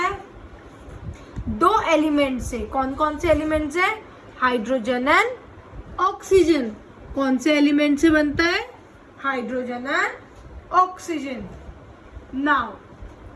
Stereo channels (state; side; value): identical; both; correlation 1.00